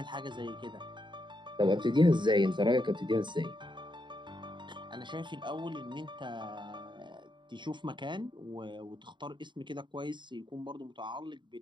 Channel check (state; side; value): late; left; 0.23 ms